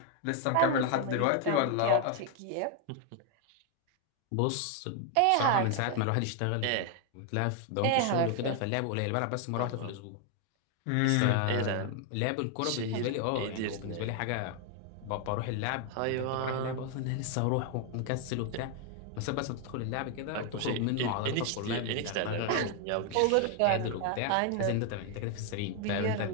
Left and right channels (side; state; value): both; different; correlation 0.00